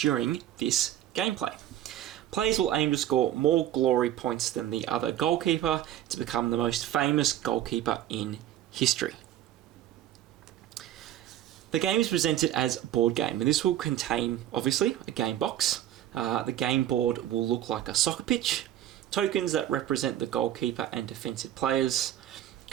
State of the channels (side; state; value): left; quieter; 12.1 dB